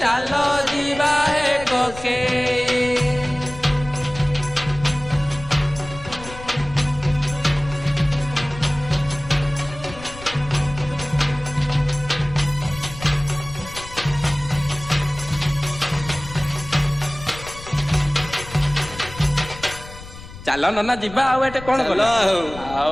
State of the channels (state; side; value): noise; left; rumble, 15 dB below the sound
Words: ଚାଲ ଯିବା ହେ କକେଇ ଚାଲ ନନା ଯିବା ଆଉ ଏଟେ କଣ କଲ